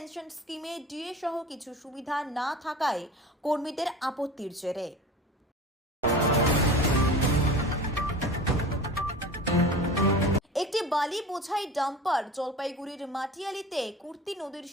স্কিমে ডিএ সহ কিছু সুবিধা না থাকায় কর্মীদের আপত্তির জেরে। একটি বালি বোঝাই ডাম্পার জলপাইগুড়ির মাটিয়ালিতে কুর্তি নদীর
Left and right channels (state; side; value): normal; both; correlation 0.36